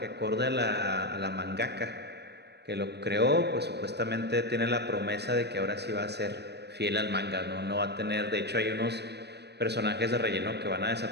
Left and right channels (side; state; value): left; late; 0.49 ms